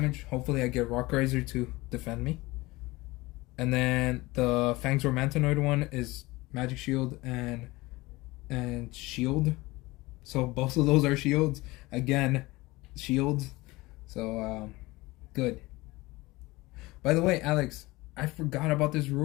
Hopefully I get Rock Riser to defend me. And then the Fangs or Mantanoid one is Magic Shield and Shield. So both of those are shields. Again, shields. So good. By the way, Alex, I forgot about this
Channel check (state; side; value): quieter; right; 21.1 dB